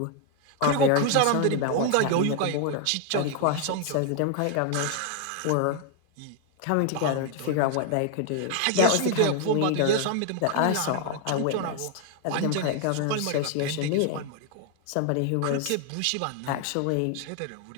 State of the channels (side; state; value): both; different; correlation 0.00